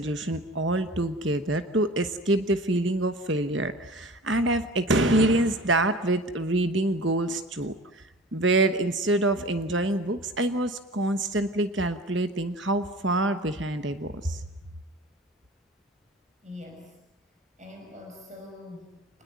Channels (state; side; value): normal; both; correlation 0.40